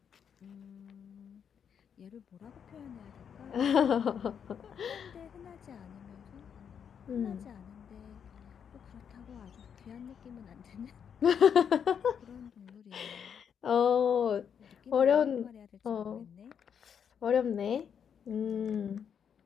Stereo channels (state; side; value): quieter; right; 7.7 dB